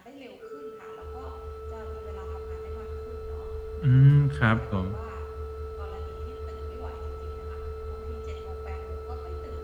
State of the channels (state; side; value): identical; both; correlation 1.00